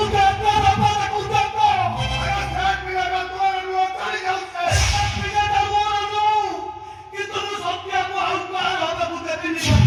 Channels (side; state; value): both; identical; correlation 1.00